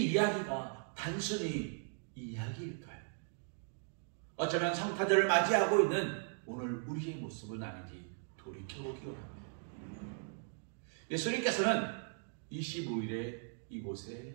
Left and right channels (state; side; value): silent; left; 52 dB below the other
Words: 이야기가 단순히 이야기일까요? 어쩌면 성탄절을 맞이하고 있는 오늘 우리의 모습은 아닌지 돌이켜보기 원합니다. 예수님께서는 25일에